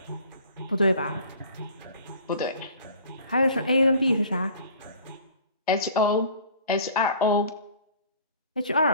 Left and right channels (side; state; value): both; inverted; correlation -0.48